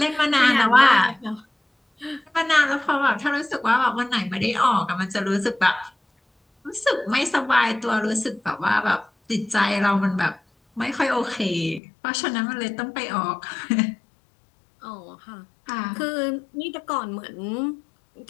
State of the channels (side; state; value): right; drops out; at 11.8 s